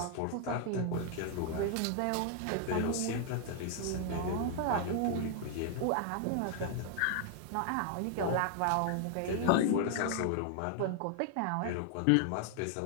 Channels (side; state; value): both; different; correlation 0.00